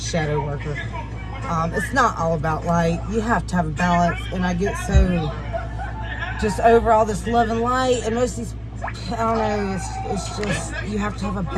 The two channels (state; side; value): identical; both; correlation 1.00